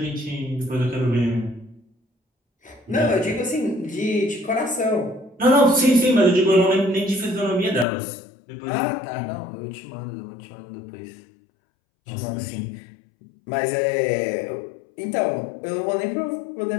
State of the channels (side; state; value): right; drops out; at 7.9 s